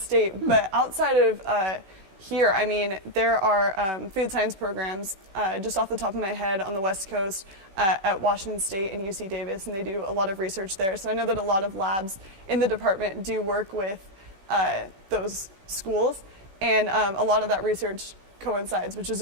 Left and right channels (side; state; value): left; late; 16 ms